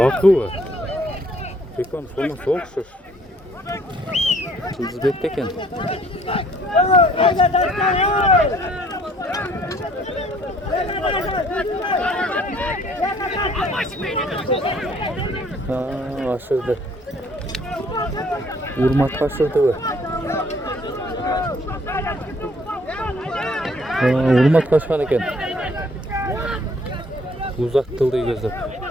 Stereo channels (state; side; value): normal; both; correlation 0.61